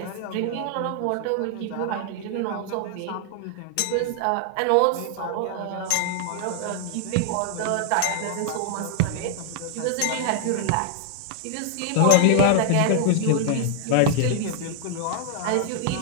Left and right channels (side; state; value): both; different; correlation 0.00